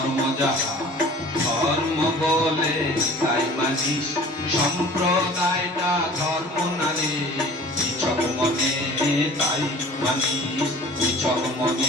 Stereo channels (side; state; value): both; normal; correlation 0.46